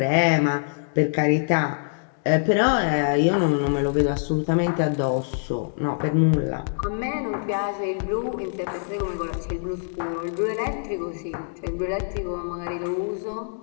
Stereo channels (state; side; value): silent; right; digital silence